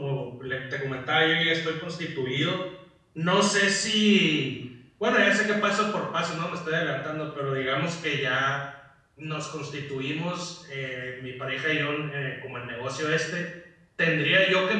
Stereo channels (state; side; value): identical; both; correlation 1.00